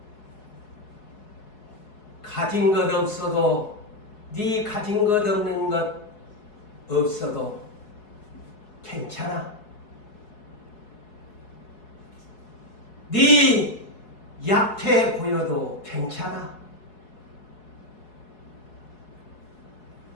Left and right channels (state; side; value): late; right; 4.7 ms